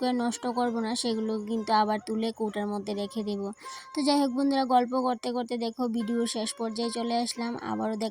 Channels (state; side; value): identical; both; correlation 1.00